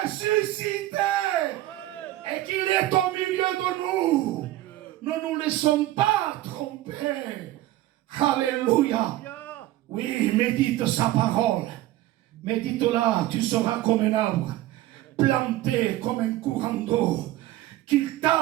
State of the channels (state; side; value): quieter; left; 15.5 dB